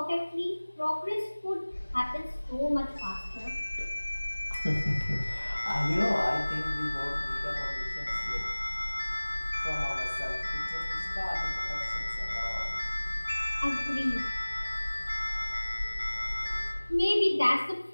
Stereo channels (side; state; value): both; inverted; correlation -1.00